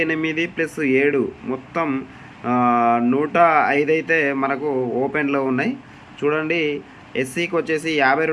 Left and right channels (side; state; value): both; identical; correlation 1.00